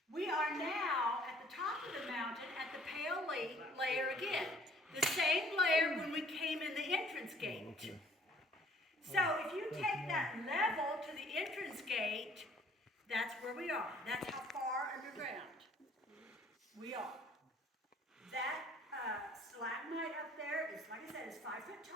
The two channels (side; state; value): both; normal; correlation 0.57